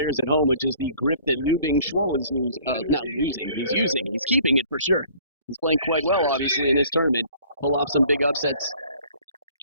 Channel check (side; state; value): both; inverted; correlation -0.54